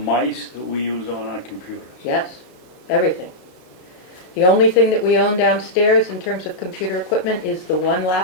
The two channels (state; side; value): late; right; 33 ms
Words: that we use on our computers. Yes, everything. The only thing that we own downstairs in terms of computer equipment is the 1